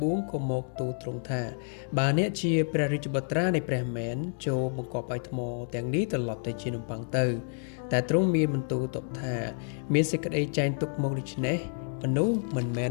បួងក៏មកទូលទ្រង់ថាបើអ្នកជាព្រះរាជបុត្រានៃព្រះមែនចូលបង្កប់ឲ្យថ្មទាំងនេះត្រឡប់ទៅជានំប៉័ងទៅតែទ្រង់មានបន្ទូលតបថាមានសេចក្តីចែងទុកមកដូច្នេះមនុស្សមិនមែន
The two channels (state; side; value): silent; right; 58 dB below the other